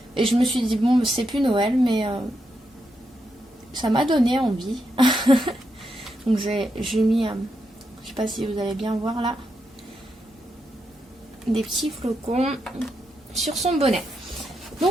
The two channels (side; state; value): both; normal; correlation 0.83